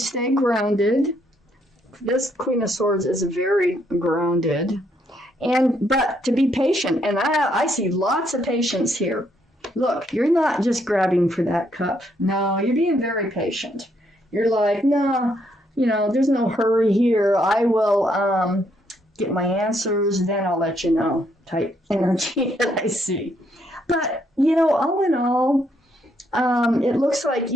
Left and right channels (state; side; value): normal; both; correlation 0.73